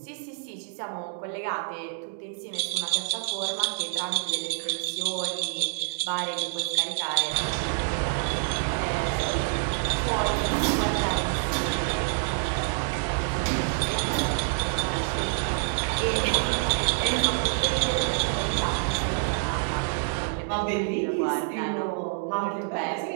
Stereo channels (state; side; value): silent; left; 60 dB below the other